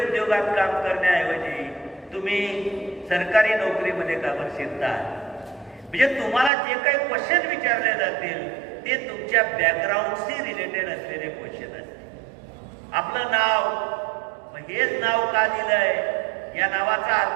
काम करण्याऐवजी तुम्ही सरकारी नोकरीमध्ये का बरं शिरता. म्हणजे तुम्हाला जे काही क्वेश्चन विचारले जातील ते तुमच्या बॅकग्राऊंडशी रिलेटेड असलेले क्वेश्चन असतील. आपलं नाव, मग हेच नाव का दिलंय, या नावाचा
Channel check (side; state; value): left; drops out; at 6.5 s